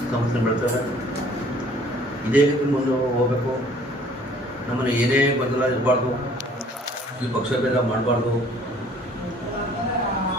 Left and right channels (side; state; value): both; normal; correlation 0.55